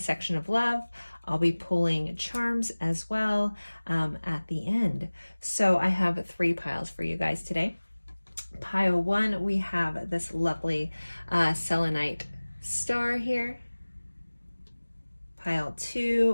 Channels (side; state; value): both; inverted; correlation -1.00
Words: of love. I'll be pulling charms as well at the end. So I have 3 piles for you guys today. Pile 1, we have this lovely selenite star here. Pile